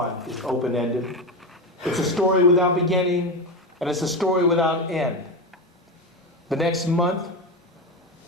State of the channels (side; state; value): both; normal; correlation 0.17